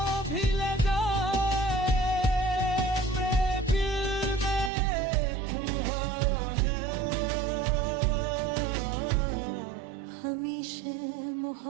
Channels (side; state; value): left; drops out; at 4.7 s